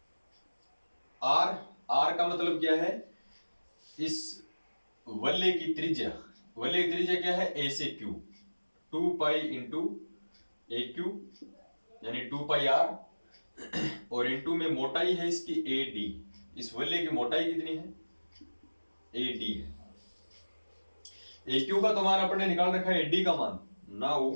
r का मतलब क्या है, इस वलय की त्रिज्या, वलय की त्रिज्या क्या है a से q, 2 पाई इंटू ए क्यू यानी 2 पाई r, और इंटू में मोटाई है इसकी AD, इस वलय की मोटाई कितनी है AD है। AQ का तो मान अपन ने निकाल रखा है AD का मान, now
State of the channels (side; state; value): both; inverted; correlation -1.00